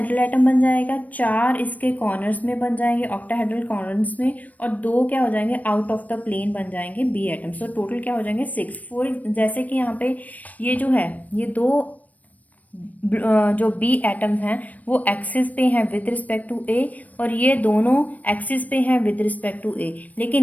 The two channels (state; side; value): late; right; 0.073 ms